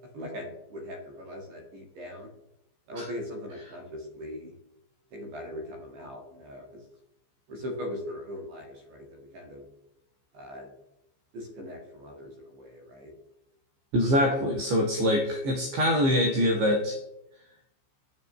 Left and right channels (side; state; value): left; late; 15 ms